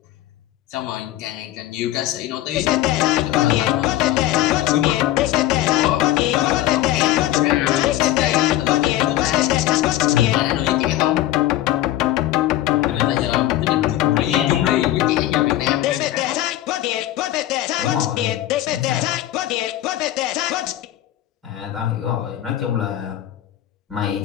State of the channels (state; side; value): quieter; right; 14.0 dB